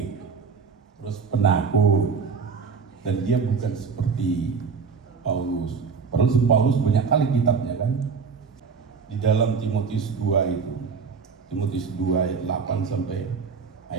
terus penakut, dan dia bukan seperti Paulus. Padahal Paulus banyak kali kitabnya kan. Di dalam Timotius 2 itu, Timotius 2 ayat 8 sampai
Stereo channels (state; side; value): quieter; left; 5.6 dB